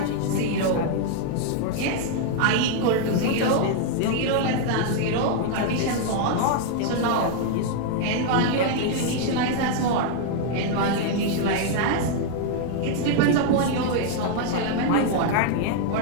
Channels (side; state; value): both; different; correlation 0.00